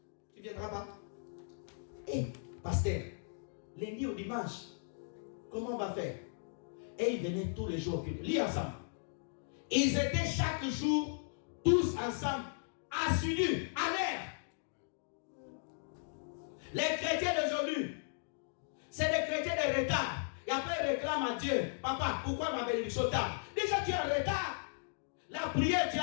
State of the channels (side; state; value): right; silent; digital silence